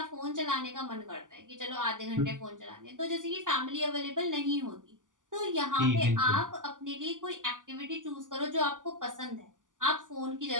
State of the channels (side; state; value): left; late; 0.88 ms